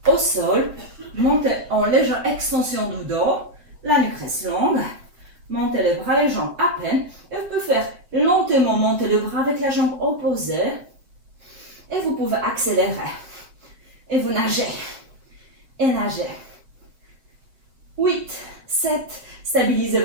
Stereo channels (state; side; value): late; left; 6.6 ms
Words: au sol. Montez en légère extension du dos. La nuque reste longue. Montez les bras, les jambes à peine. Et vous pouvez faire lentement monter le bras avec la jambe opposée. Et vous pouvez accélérer. Et vous nagez. Et nagez. 8, 7. Stabilisez